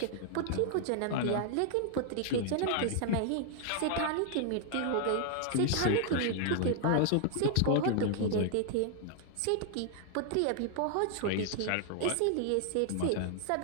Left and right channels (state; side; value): different; both; correlation 0.00